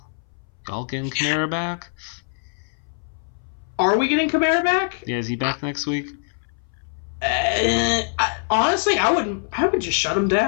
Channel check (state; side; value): silent; right; 61 dB below the other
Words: Y'all getting Kamara back? Are we getting Kamara back? Yeah, is he back next week? Honestly, I would just shut him